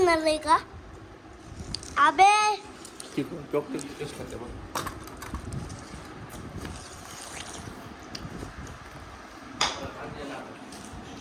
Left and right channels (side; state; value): both; identical; correlation 1.00